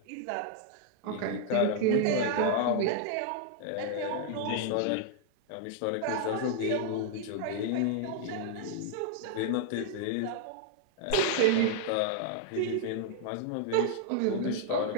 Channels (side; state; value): both; different; correlation -0.01